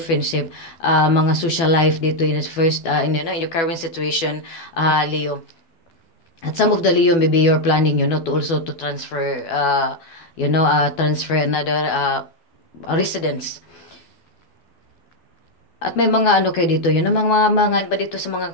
mga social life dito in first, in your current situation, Leo. At some of the Leo, maybe you're planning, to also to transfer, transfer another residence. At may mga ano kayo dito, mga ba dito sa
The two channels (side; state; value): right; late; 12 ms